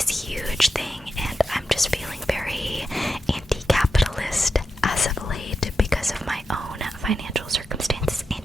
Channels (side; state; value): both; normal; correlation 0.88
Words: huge thing, and I'm just feeling very anti-capitalist as of late because of my own financial circumstances and